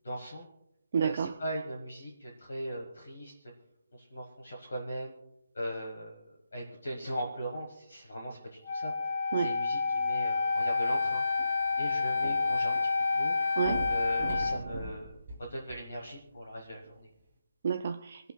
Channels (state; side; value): inverted; both; correlation -0.86